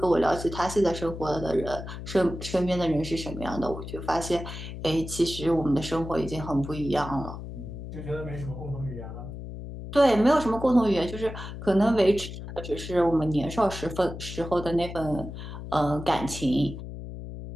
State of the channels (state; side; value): noise; left; hum, 10 dB below the sound